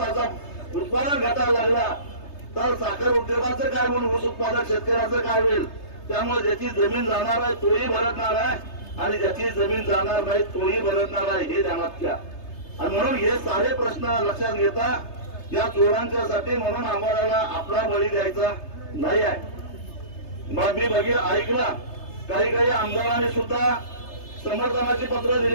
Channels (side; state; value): right; late; 3.3 ms